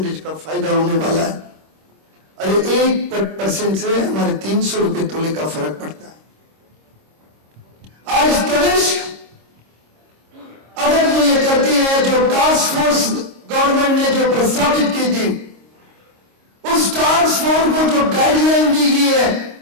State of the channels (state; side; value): late; left; 26 ms